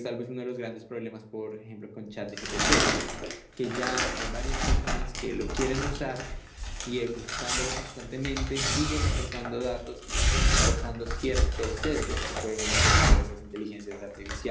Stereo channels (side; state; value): both; identical; correlation 1.00